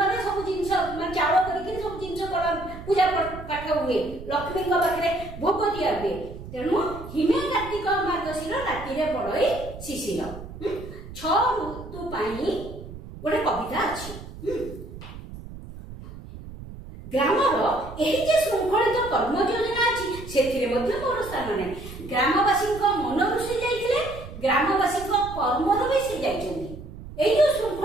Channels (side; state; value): right; noise; rumble, 13 dB below the sound